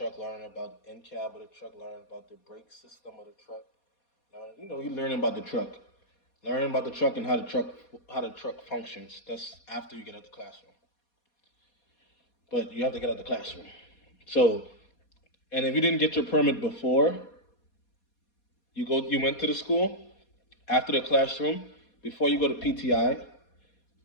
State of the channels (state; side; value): late; right; 4.2 ms